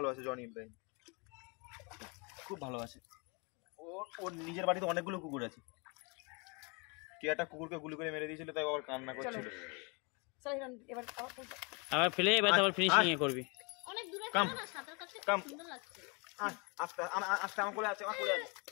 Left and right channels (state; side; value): quieter; right; 31.6 dB